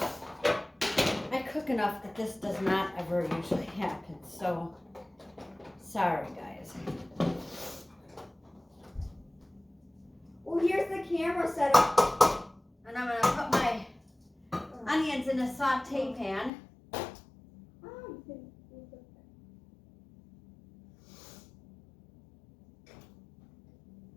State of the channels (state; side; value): drops out; right; at 16.5 s